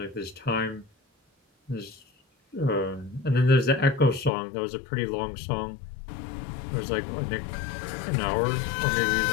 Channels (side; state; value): right; drops out; at 4.3 s